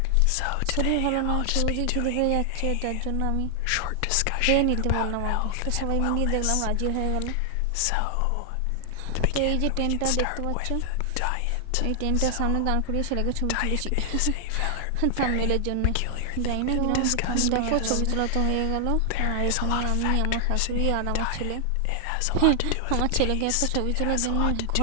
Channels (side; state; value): both; different; correlation 0.00